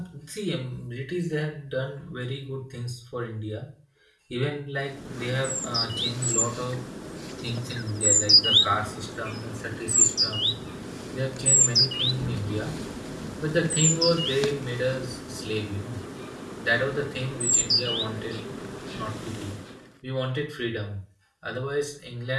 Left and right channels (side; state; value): both; identical; correlation 1.00